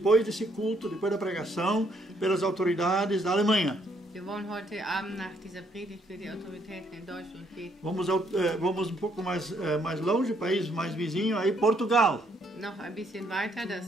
desse culto, depois da pregação, pelas autoridades da Alemanha. Wir wollen heute Abend nach dieser Predigt für die Autoritäten in Deutschland beten. Vamos pouco mais longe, país mais vizinho, aí Portugal. Noch ein bisschen weiter,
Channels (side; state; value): both; normal; correlation 0.70